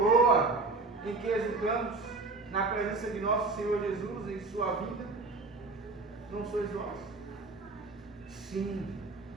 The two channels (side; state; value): left; quieter; 3.6 dB